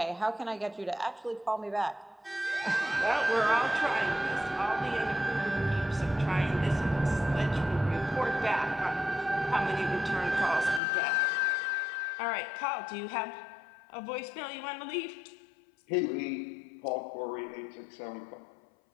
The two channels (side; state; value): right; drops out; at 10.8 s